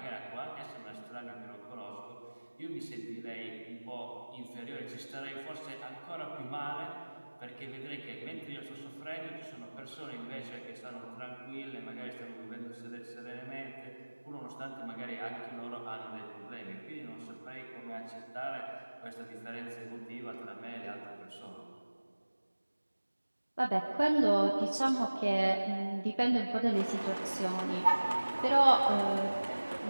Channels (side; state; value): both; inverted; correlation -1.00